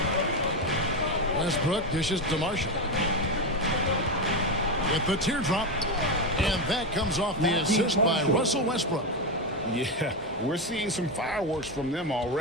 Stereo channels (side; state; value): both; normal; correlation 0.12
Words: Westbrook dishes to Marshall. With the teardrop. And that comes off the assist by Russell Westbrook. Yeah, we're seeing some fireworks from them